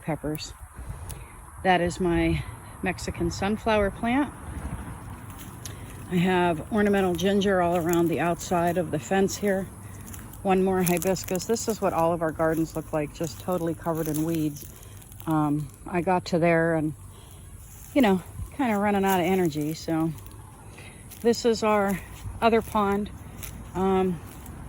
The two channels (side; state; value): both; identical; correlation 1.00